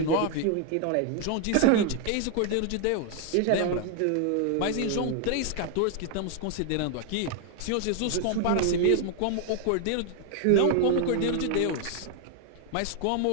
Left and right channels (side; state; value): both; different; correlation 0.00